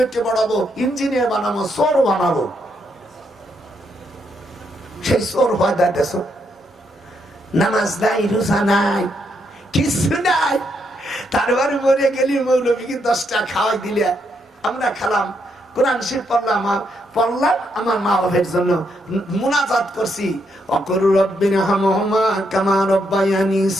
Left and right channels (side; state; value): both; normal; correlation 0.77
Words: বাড়াবো, ইঞ্জিনিয়ার বানাবো, চোর বানাবো। সেই চোর হয় দাঁড়াতেছ, নামাজ নাই, রোজা নাই, কিছু নাই। তারপরে মরে গেলি মৌলবীকে 10টা খাওয়াই দিলে আমরা খেলাম, কোরআন শরীফ পড়লাম আমার মা বাবার জন্য মুনাজাত করছি ওয়াকুর রব্বিরহামহুমা কামা রাব্বায়ানি